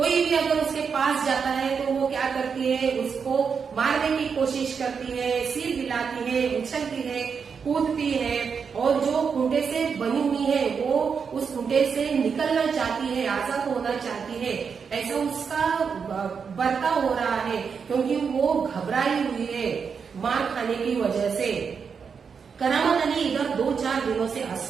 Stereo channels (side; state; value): left; quieter; 6.1 dB